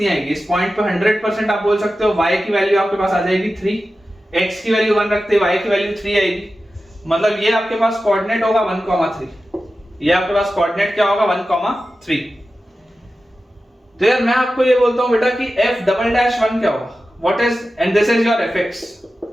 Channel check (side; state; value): both; normal; correlation 0.93